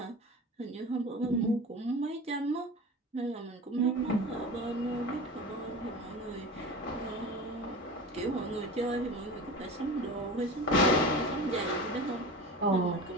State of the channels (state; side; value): normal; both; correlation 0.32